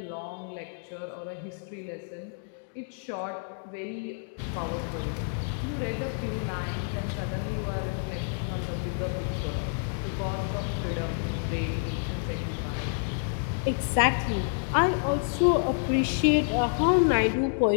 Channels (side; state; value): right; silent; digital silence